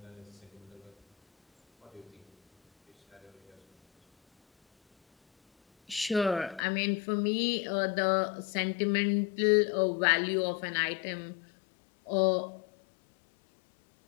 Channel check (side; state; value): right; drops out; at 6.6 s